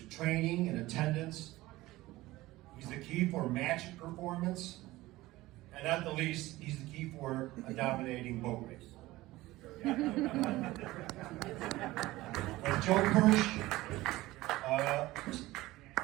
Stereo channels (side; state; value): left; quieter; 18.2 dB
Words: training and attendance. He's the key for match performance. And at the least, he's the key for a dominating boat race. When Joe Kirsch